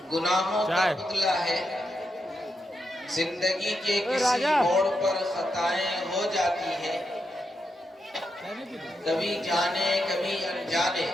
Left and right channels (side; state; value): both; normal; correlation 0.84